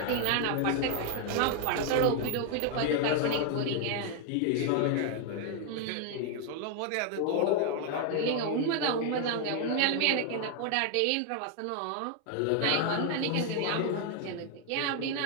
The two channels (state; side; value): different; both; correlation 0.00